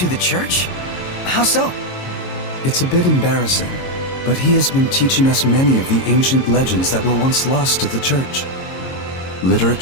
the church? How so? It's a bit embarrassing, but he has been teaching us many of the ancient legends that were once lost to the church.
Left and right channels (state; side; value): late; right; 22 ms